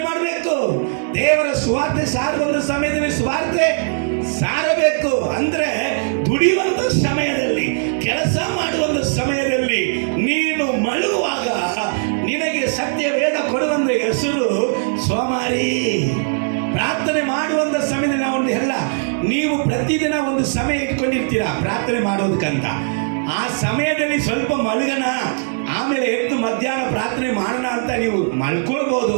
ಮಾಡಬೇಕು. ದೇವರ ಸುವಾರ್ತೆ ಸಾರುವ ಸಮಯದಲ್ಲಿ ಸುವಾರ್ತೆ ಸಾರಬೇಕು. ಅಂದ್ರೆ ದುಡಿಯುವಂತ ಸಮಯದಲ್ಲಿ, ಕೆಲಸ ಮಾಡುವ ಸಮಯದಲ್ಲಿ ನೀನು ಮಲಗುವಾಗ ನಿನಗೆ ಸತ್ಯ ವೇದ ಕೊಡುವಂತ ಹೆಸರು ಸೋಮಾರಿ. ಪ್ರಾರ್ಥನೆ ಮಾಡುವಂತ ಸಮಯದಲ್ಲಿ ನಾವು ಎಲ್ಲ, ನೀವು ಪ್ರತಿದಿನ ಒಂದು ಸಮಯ ಇಟ್ಕೊಂಡಿರ್ತೀರಾ ಪ್ರಾರ್ಥನೆ ಮಾಡೋದಕ್ಕಂತ. ಆ ಸಮಯದಲ್ಲಿ ಸ್ವಲ್ಪ ಮಲಗನ, ಆಮೇಲೆ ಎದ್ದು ಮಧ್ಯಾಹ್ನ ಪ್ರಾರ್ಥನೆ ಮಾಡೋಣ ಅಂತ ನೀವು ಮಲ್ಕೊಳ್ಬೋದು.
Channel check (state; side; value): silent; left; 66 dB below the other